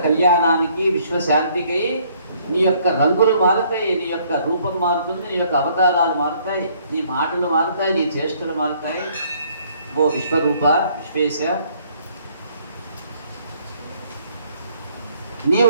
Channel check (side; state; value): both; inverted; correlation -0.64